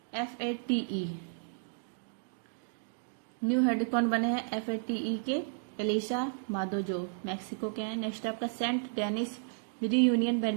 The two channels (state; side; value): silent; left; digital silence